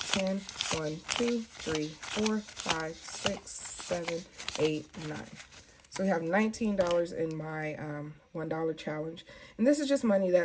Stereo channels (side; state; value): both; identical; correlation 1.00